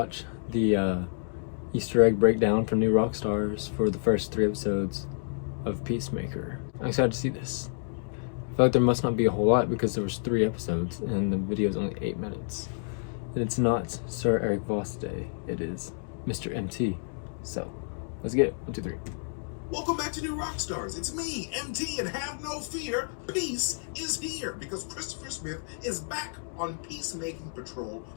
the Easter egg breakdown from New Rockstars for the first 3 episodes of Peacemaker. I'm excited to see this. I feel like there must not be a whole lot because there was 3 episodes and the video is only 8 minutes. And it's not Sir Eric Voss Day, it is Mr. MT. So, let's get it. 1, 2, 3. Welcome back to New Rockstars. It's me, MT, and have no fear, peace is here because Christopher Smith is back on Peacemaking Patrol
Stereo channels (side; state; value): right; silent; digital silence